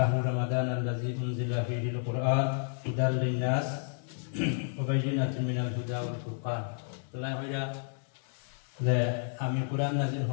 রমাদান আল্লাযী উনজিলা ফীহিল কুরআন হুদাল লিন-নাস ওয়া বায়িনাতিন মিনাল হুদা ওয়াল ফুরকান। আল্লাহ হইরা যে আমি কোরআন নাযিল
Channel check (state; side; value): silent; right; 57 dB below the other